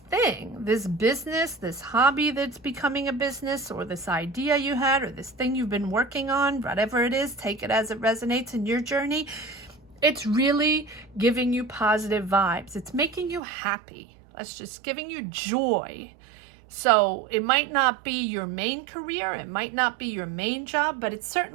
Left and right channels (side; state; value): left; drops out; at 13.4 s